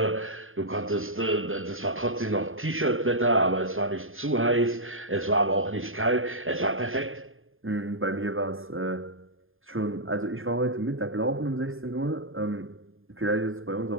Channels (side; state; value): left; late; 0.59 ms